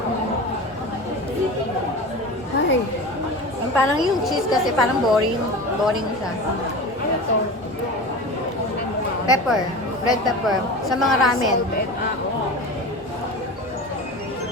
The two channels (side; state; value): both; normal; correlation 0.30